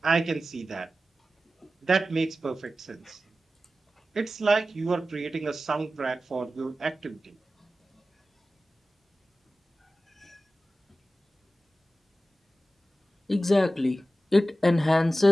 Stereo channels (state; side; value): normal; both; correlation 0.94